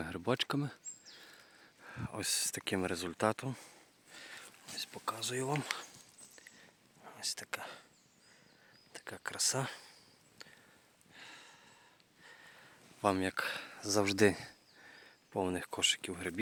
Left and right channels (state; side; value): identical; both; correlation 1.00